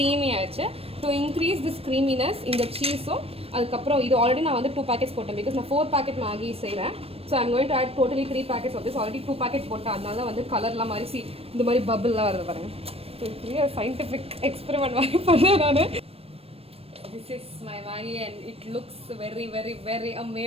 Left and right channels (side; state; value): left; late; 0.28 ms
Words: ஆயிடுச்சு. டு இன்க்ரீஸ் திஸ் க்ரீமினஸ் இந்த சீஸும் அதுக்கப்புறம் இது ஆல்ரெடி நான் வந்து 2 packets போட்டேன். பிகாஸ் நான் 4 packet மேகி செய்கிறேன். So I'm going to add totally 3 packets of this. Already 2 packet போட்டேன். அதனால வந்து கலர்லாம் மாதிரி இந்த மாதிரி பபிள்லாம் வருது பாருங்கள். சயின்டிஃபிக் எக்ஸ்பெரிமெண்ட் மாதிரி பண்ணேன் நான். This is my Maggi and it looks very